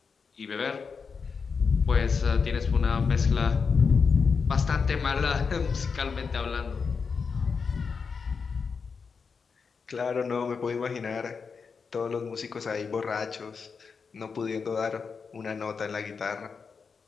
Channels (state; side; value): quieter; right; 5.5 dB